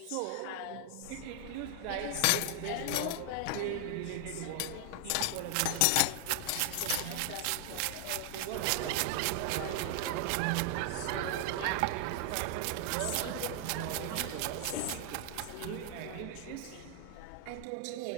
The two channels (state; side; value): different; both; correlation 0.00